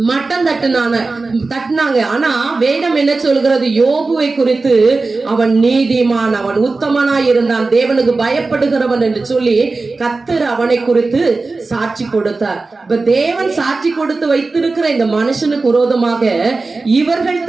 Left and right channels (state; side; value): quieter; left; 3.7 dB